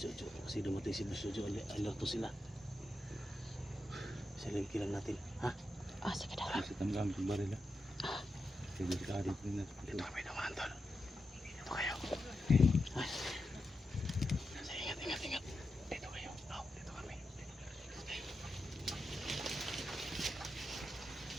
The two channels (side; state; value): both; normal; correlation 0.88